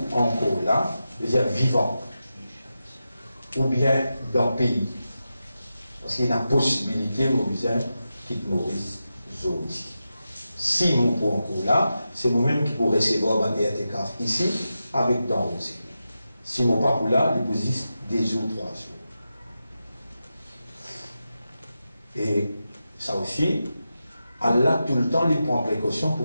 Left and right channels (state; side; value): inverted; both; correlation -0.90